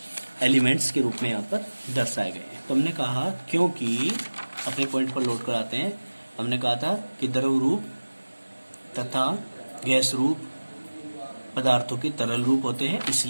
एलिमेंट्स के रूप में यहाँ पर दर्शाए गए हैं। तो हमने कहा, क्योंकि अपने पॉइंट पर लोड कराते हैं, हमने कहा था कि द्रव रूप तथा गैस रूप पदार्थों के तरल रूप होते हैं,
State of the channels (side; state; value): both; inverted; correlation -1.00